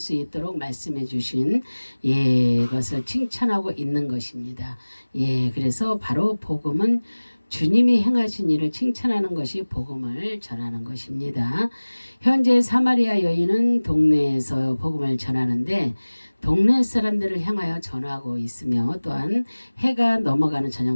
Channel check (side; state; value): both; inverted; correlation -1.00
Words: 있도록 말씀해 주신 것을 칭찬하고 있는 것입니다. 그래서 바로 복음은 주님이 행하신 일을 칭찬하는 것이 복음을 전하는 것입니다. 현재 사마리아 여인은 동네에서 복음을 전하는데 동네 사람들을 향하여 전하고 있으며 또한 해가 넘어가는